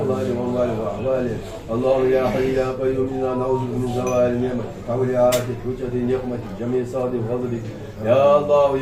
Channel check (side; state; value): both; identical; correlation 1.00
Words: وأموالهم وأحوالهم اللهم يا حي يا قيوم إنا نعوذ من زوال نعمتك حول عافيتك حجة نقمتك جميع صاد فضلك يا الله